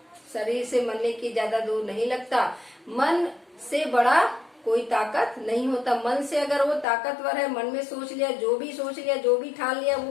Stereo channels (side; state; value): right; drops out; at 6.9 s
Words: शरीर से मरने की ज्यादा दूर नहीं लगता। मन से बड़ा कोई ताकत नहीं होता। मन से अगर वो ताकतवर है, मन में सोच लिया, जो भी सोच लिया, जो भी ठान लिया